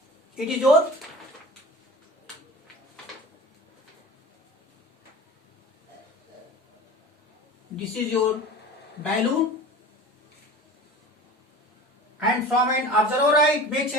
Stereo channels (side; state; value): both; normal; correlation 0.37